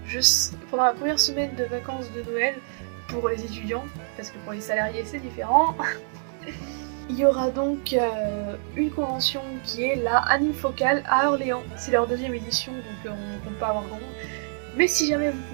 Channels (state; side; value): silent; left; 61 dB below the other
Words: pendant la première semaine de vacances de Noël pour les étudiants, parce que pour les salariés c'est différent. Il y aura donc une convention qui est la Anime Focale à Orléans. C'est leur deuxième édition, donc on ne compte pas avoir grand monde. Mais si jamais vous